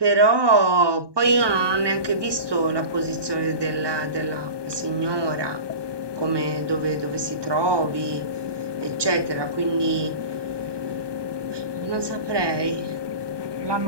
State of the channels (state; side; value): late; left; 1.2 ms